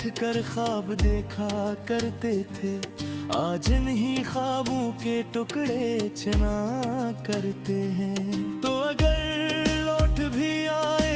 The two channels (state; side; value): identical; both; correlation 1.00